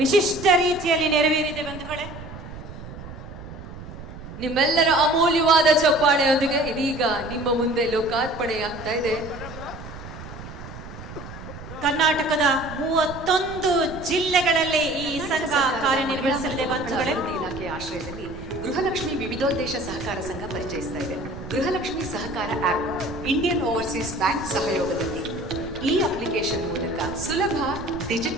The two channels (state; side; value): noise; right; rumble, 13 dB below the sound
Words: ರೀತಿಯಲ್ಲಿ ನೆರವೇರಿದೆ ಬಂಧುಗಳೇ. ನಿಮ್ಮೆಲ್ಲರ ಅಮೂಲ್ಯವಾದ ಚಪ್ಪಾಳೆಯೊಂದಿಗೆ ಇದೀಗ ನಿಮ್ಮ ಮುಂದೆ ಲೋಕಾರ್ಪಣೆಯಾಗ್ತಾ ಇದೆ. ಕರ್ನಾಟಕದ 31 ಜಿಲ್ಲೆಗಳಲ್ಲಿ ಈ ಸಂಘ ಕಾರ್ಯನಿರ್ವಹಿಸಲಿದೆ ಬಂಧುಗಳೇ. ಇಲಾಖೆಯ ಆಶ್ರಯದಲ್ಲಿ ಗೃಹಲಕ್ಷ್ಮಿ ವಿವಿಧೋದ್ದೇಶ ಸಹಕಾರ ಸಂಘ ಪರಿಚಯಿಸ್ತಾ ಇದೆ. ಗೃಹಲಕ್ಷ್ಮಿ ಸಹಕಾರ ಆಪ್, ಇಂಡಿಯನ್ ಓವರ್ಸೀಸ್ ಬ್ಯಾಂಕ್ ಸಹಯೋಗದಲ್ಲಿ ಈ ಅಪ್ಲಿಕೇಶನ್ ಮೂಲಕ ಸುಲಭ